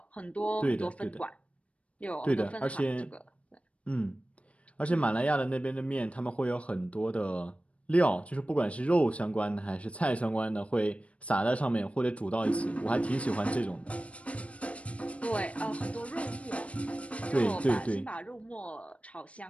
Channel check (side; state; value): right; late; 0.063 ms